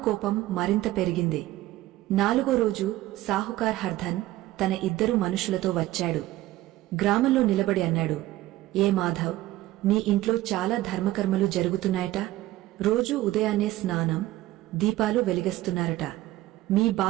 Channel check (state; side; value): quieter; left; 16.3 dB